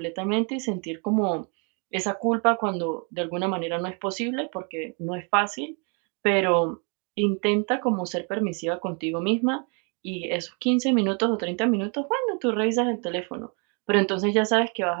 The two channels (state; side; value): quieter; left; 36.3 dB